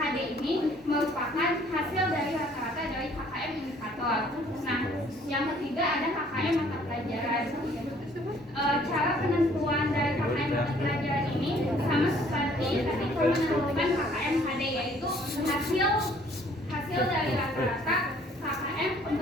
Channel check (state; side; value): normal; both; correlation 0.59